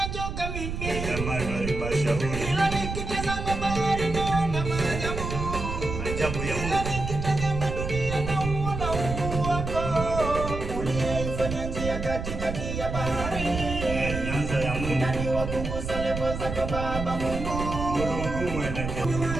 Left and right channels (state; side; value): noise; right; rumble, 5 dB below the sound